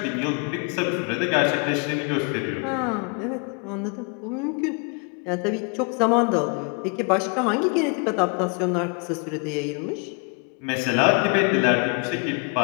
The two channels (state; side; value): quieter; right; 36.5 dB